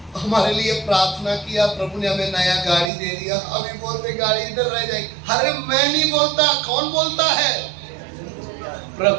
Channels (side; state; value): left; drops out; at 2.9 s